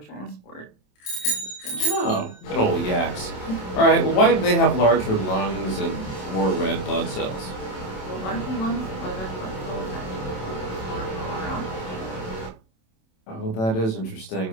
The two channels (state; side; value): late; right; 27 ms